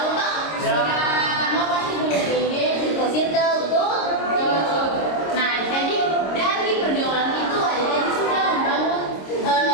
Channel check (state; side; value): late; right; 26 ms